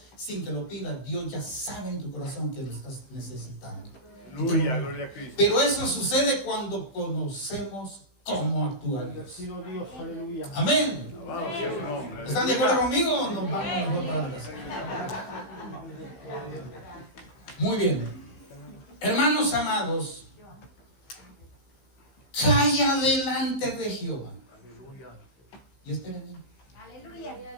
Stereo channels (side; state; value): right; late; 15 ms